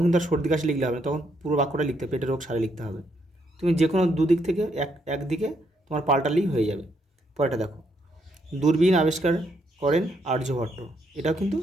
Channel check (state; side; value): normal; both; correlation 0.75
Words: কিন্তু আর সর্দি কাশি লিখলে হবে না, তখন পুরো বাক্যটা লিখতে হবে, পেটের রোগ সারে লিখতে হবে। তুমি যে কোনো দুদিক থেকে একদিকে তোমার পাল্টালেই হয়ে যাবে। পরেটা দেখো, দূরবীন আবিষ্কার করেন আর্যভট্ট। এটাও কিন্তু